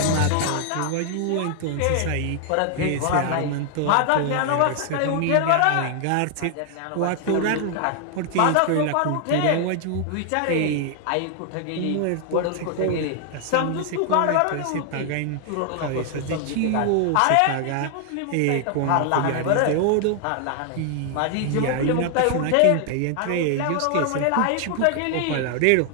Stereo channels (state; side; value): different; both; correlation 0.00